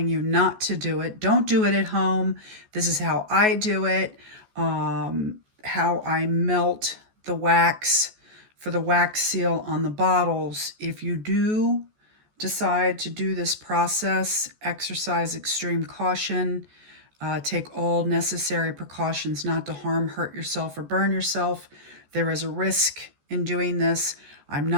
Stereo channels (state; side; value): late; left; 14 ms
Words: you not to do it. Don't do it at home. This is how I do it, how I melt the wax for the wax seal on the bottles. If you do decide to do this process, exercise extreme caution. Take all necessary precautions not to harm, hurt yourself, or burn yourself. There is a risk in doing this. I'm